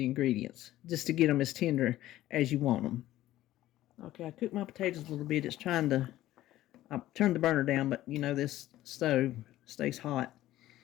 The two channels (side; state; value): right; quieter; 14.7 dB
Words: ingredients, just to get them as tender as you want them. Okay, I cooked my potatoes a little bit. I turned the burner down, but you know this stove stays hot.